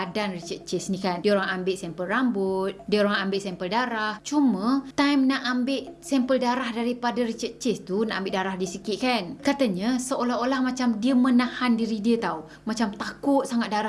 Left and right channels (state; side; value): identical; both; correlation 1.00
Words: Richard Chase ni kan. Diorang ambil sampel rambut, diorang ambil sampel darah. Cuma time nak ambil sampel darah daripada Richard Chase tu, nak ambil darah dia sikit kan, katanya seolah-olah macam dia menahan diri dia tau. Macam takut sangat